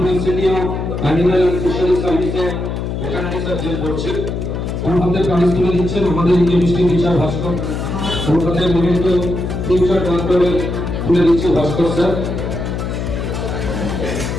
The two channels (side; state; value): left; noise; hum, 3 dB below the sound